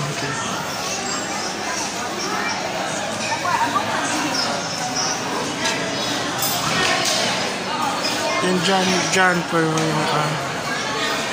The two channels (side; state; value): both; identical; correlation 1.00